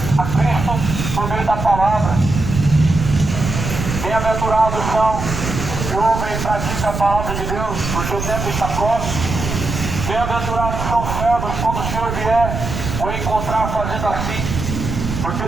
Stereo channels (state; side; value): noise; right; rumble, 5 dB below the sound